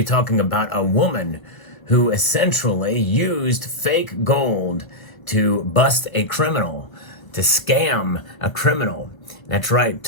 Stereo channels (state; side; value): late; right; 1.5 ms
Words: talking about a woman who essentially used fake gold to bust a criminal, to scam a criminal. That's right,